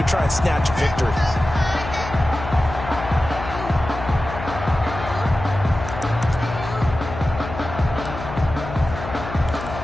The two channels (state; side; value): noise; left; hum, 9 dB below the sound